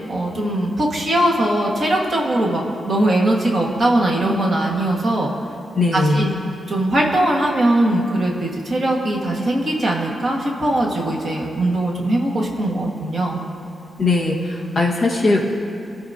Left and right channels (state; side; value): normal; both; correlation 0.84